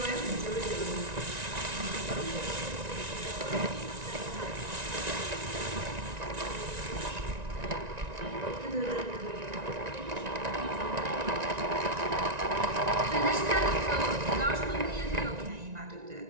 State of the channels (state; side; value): late; left; 1.9 ms